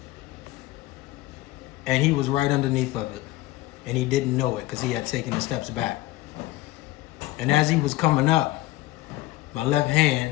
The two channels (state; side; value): quieter; right; 17.7 dB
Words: and he was right underneath of it, and he didn't know it because he had taken the steps back. And as he was coming up, my left